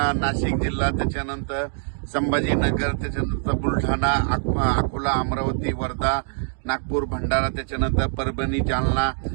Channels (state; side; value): silent; left; 63 dB below the other